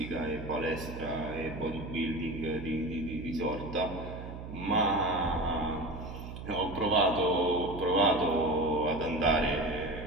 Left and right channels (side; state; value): right; noise; hum, 10 dB below the sound